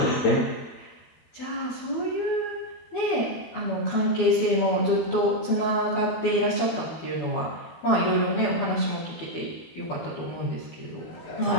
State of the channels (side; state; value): right; late; 12 ms